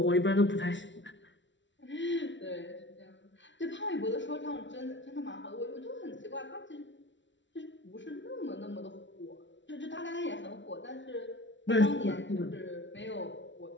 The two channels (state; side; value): late; right; 0.54 ms